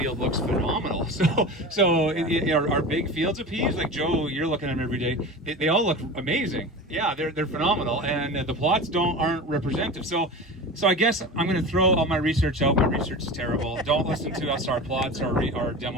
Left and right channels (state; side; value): normal; both; correlation 0.31